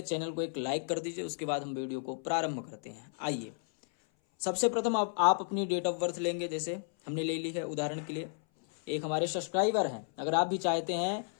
चैनल को एक लाइक कर दीजिए, उसके बाद हम वीडियो को प्रारंभ करते हैं। आइए, सबसे प्रथम आप अपनी डेट ऑफ बर्थ लेंगे। जैसे हमने ले ली है, उदाहरण के लिए एक हमारे सब्सक्राइबर हैं। अगर आप भी चाहते हैं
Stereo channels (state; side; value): silent; right; 56 dB below the other